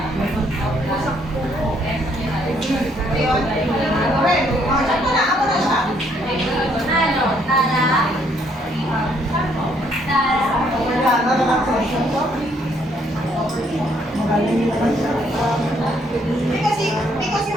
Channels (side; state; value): both; normal; correlation 0.68